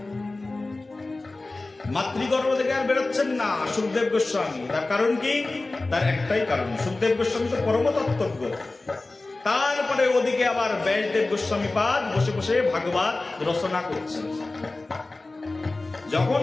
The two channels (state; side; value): quieter; right; 3.2 dB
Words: মাতৃগর্ভ থেকে আর বেরোচ্ছেন না সুখদেব গোস্বামী। তার কারণ কি? তার একটাই কারণ, সুখদেব গোস্বামী তো পরম তত্ত্বজ্ঞ। তারপরে ওদিকে আবার ব্যাসদেব গোস্বামী পাদ বসে বসে ভাগবত রচনা করছেন। যখন